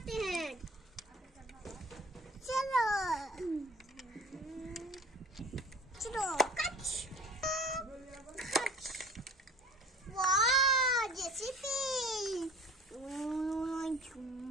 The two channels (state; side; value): normal; both; correlation 0.43